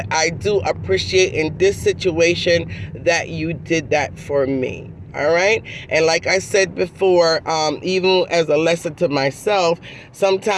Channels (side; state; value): both; identical; correlation 1.00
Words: I do appreciate in this situation that you did that for me. All right. And like I said before, even as a lesson to myself,